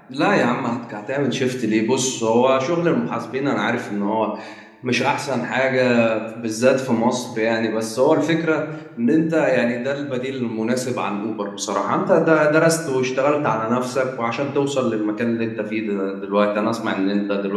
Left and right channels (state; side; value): identical; both; correlation 1.00